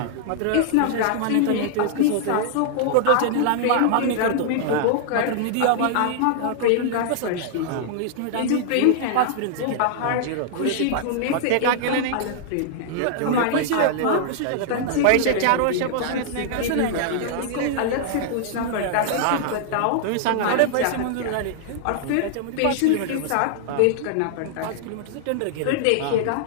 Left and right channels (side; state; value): both; different; correlation -0.01